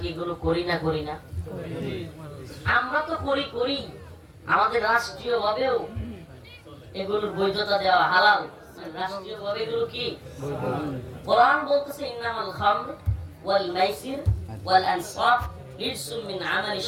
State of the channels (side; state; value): both; identical; correlation 1.00